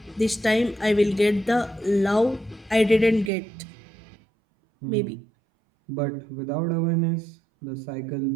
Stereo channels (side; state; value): left; drops out; at 3.3 s